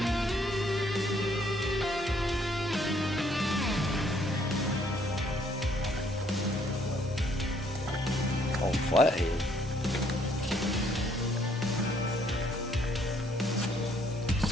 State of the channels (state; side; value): normal; both; correlation 0.66